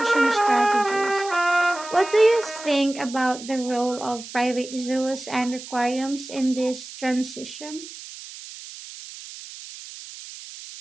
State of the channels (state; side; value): noise; right; hiss, 14 dB below the sound